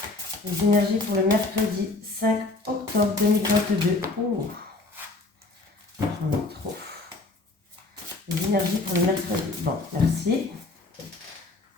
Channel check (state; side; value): quieter; right; 3.3 dB